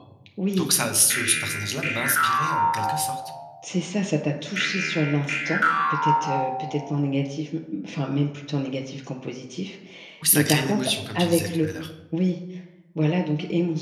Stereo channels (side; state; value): both; identical; correlation 1.00